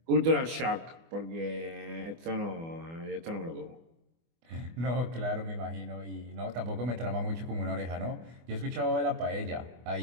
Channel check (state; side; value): late; left; 24 ms